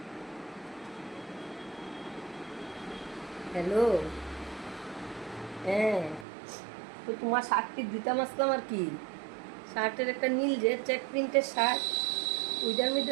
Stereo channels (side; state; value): left; drops out; at 6.2 s